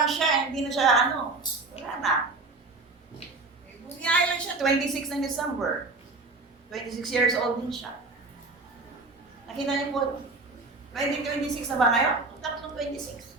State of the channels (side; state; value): left; quieter; 3.6 dB